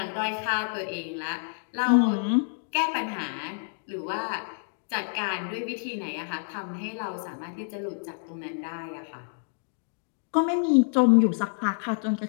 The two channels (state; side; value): silent; right; digital silence